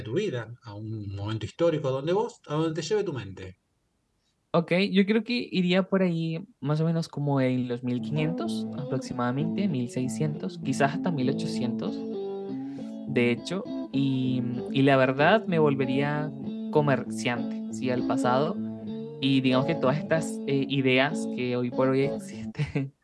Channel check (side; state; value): both; identical; correlation 1.00